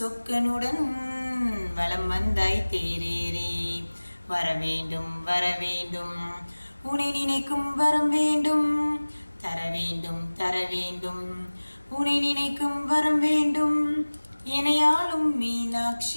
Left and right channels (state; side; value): inverted; both; correlation -1.00